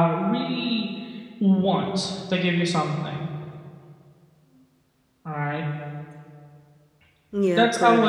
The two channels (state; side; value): identical; both; correlation 1.00